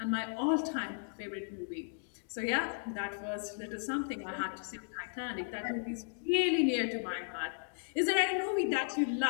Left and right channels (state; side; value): silent; right; digital silence